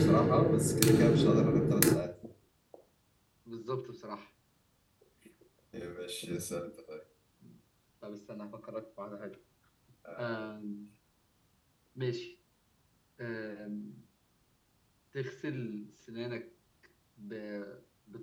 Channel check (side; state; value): both; identical; correlation 1.00